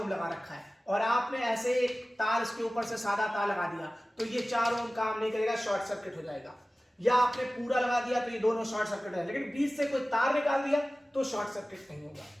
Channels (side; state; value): both; normal; correlation 0.97